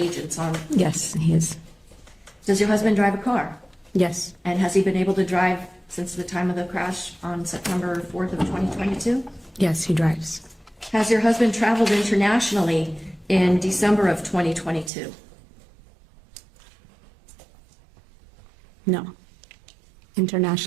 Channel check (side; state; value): left; drops out; at 14.9 s